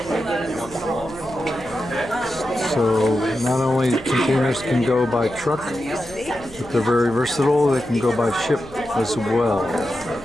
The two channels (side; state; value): right; noise; hum, 17 dB below the sound